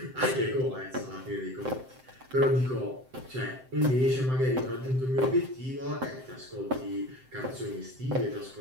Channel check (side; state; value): left; late; 7.7 ms